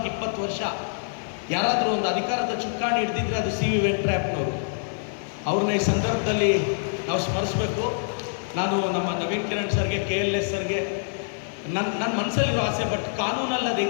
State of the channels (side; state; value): right; silent; digital silence